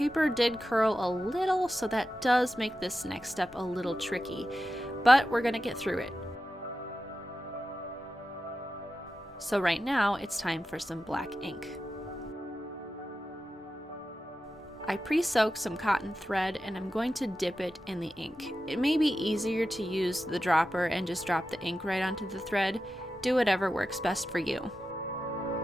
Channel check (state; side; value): normal; both; correlation 0.92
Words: did curl a little, so that does make this next step a little tricky, but we're gonna get through it. So right now, it's time for some black ink. I pre-soaked some cotton thread and I'm going to dip it in the ink. It may be easier to use the dropper and just drop the ink right onto the thread. Do whatever works best for you.